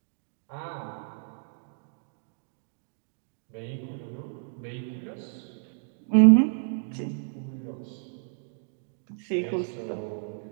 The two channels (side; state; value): left; silent; digital silence